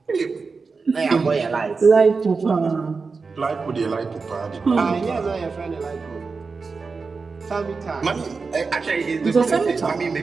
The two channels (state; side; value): quieter; left; 4.6 dB